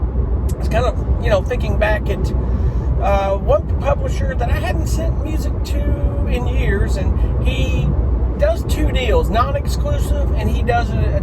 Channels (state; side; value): identical; both; correlation 1.00